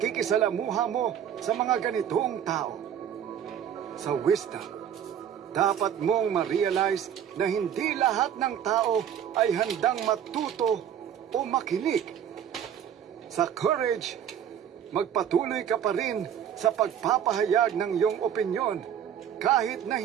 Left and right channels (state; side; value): quieter; left; 9.3 dB